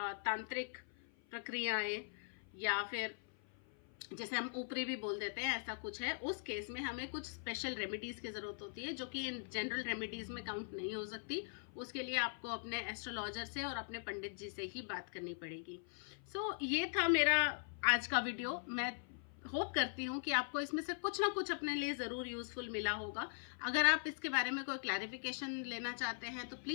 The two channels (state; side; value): silent; right; 50 dB below the other